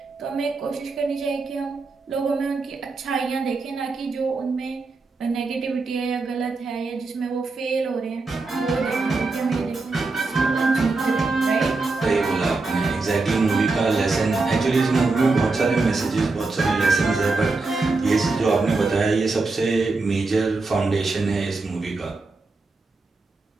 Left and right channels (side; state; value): left; quieter; 3.7 dB